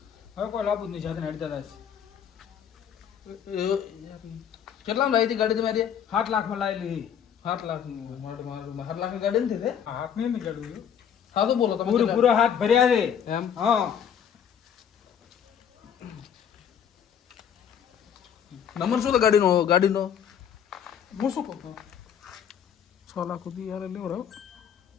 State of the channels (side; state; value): right; quieter; 8.5 dB